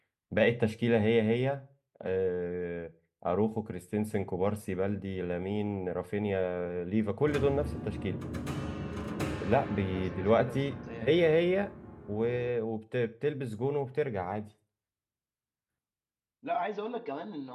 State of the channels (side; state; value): both; identical; correlation 1.00